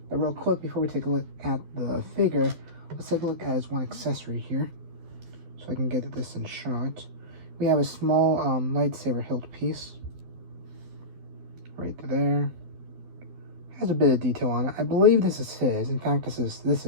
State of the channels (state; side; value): late; left; 12 ms